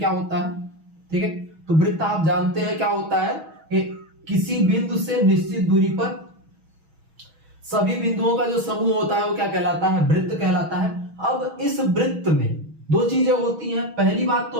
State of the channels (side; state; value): left; late; 6.2 ms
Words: होता है। ठीक है, तो वृत्त आप जानते हैं क्या होता है कि किसी बिंदु से निश्चित दूरी पर सभी बिंदुओं का जो समूह होता है वो क्या कहलाता है, वृत्त कहलाता है। अब इस वृत्त में दो चीजें होती हैं। पहली बात तो